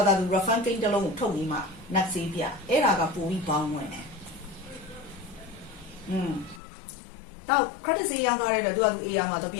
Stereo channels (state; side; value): drops out; right; at 6.6 s